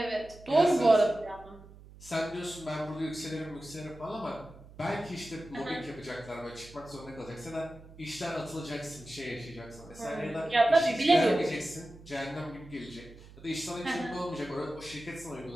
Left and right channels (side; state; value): right; noise; hum, 20 dB below the sound